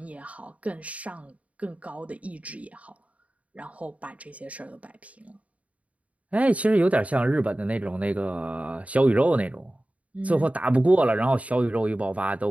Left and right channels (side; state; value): left; late; 0.067 ms